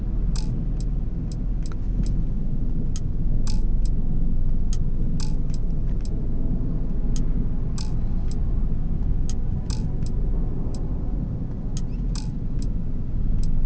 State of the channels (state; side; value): identical; both; correlation 1.00